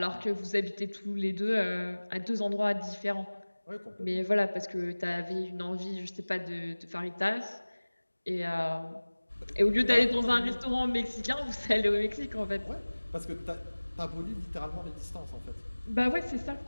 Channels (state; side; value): inverted; both; correlation -1.00